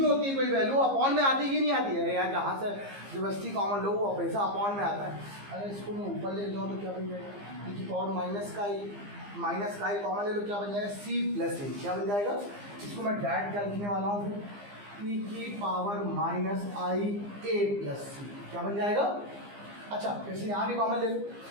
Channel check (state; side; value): late; left; 15 ms